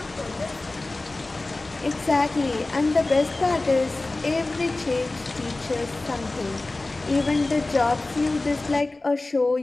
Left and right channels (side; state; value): right; quieter; 3.1 dB